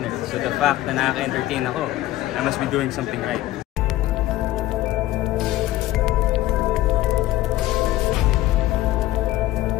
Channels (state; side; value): quieter; right; 15.7 dB